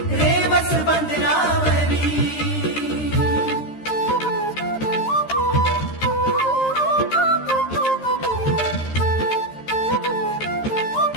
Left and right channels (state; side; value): late; right; 13 ms